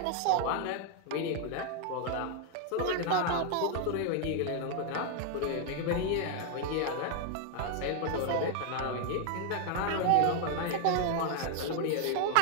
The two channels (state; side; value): different; both; correlation 0.00